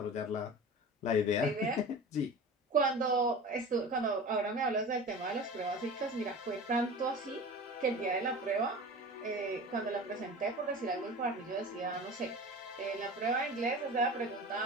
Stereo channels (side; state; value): both; normal; correlation 0.35